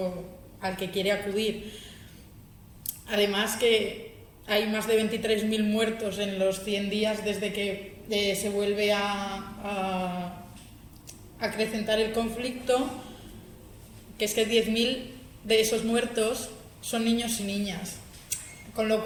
al que quiere acudir. Además, que hay más de 23.000 muertos en los 100 días desde que se vuelve a acrecentar el conflicto, que es que 10.000 de esos muertos son niños y niñas, con lo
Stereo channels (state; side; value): identical; both; correlation 1.00